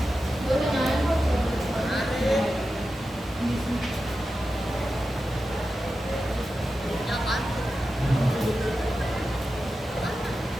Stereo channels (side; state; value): both; normal; correlation 0.91